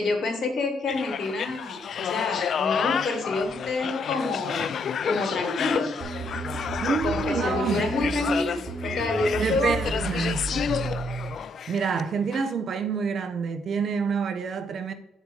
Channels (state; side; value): normal; both; correlation 0.72